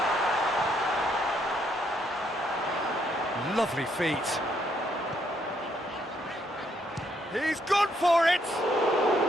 Lovely feet. He's gone for it!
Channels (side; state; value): both; normal; correlation 0.72